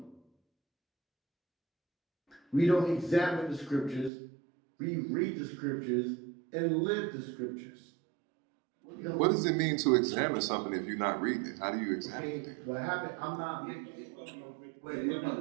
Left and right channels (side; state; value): left; drops out; at 4.1 s